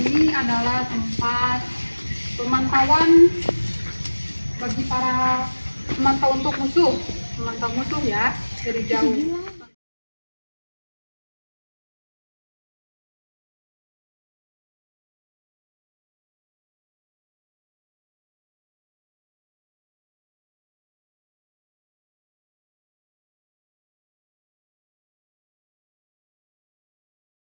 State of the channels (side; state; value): both; inverted; correlation -1.00